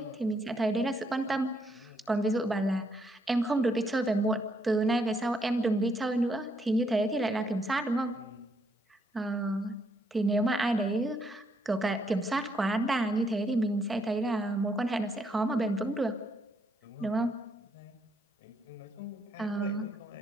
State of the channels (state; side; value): normal; both; correlation 0.74